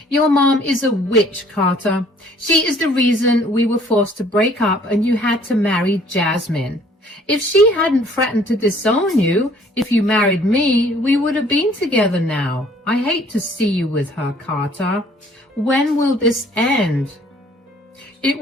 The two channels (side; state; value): both; normal; correlation 0.57